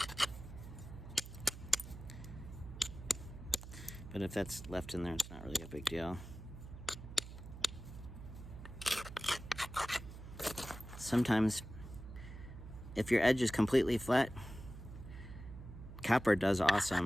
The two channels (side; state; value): right; noise; hum, 12 dB below the sound